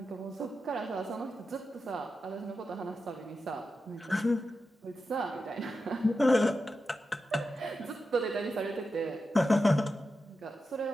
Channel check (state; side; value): normal; both; correlation 0.90